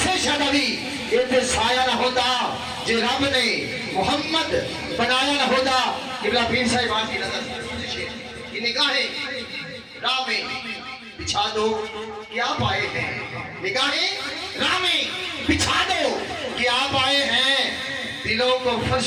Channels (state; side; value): identical; both; correlation 1.00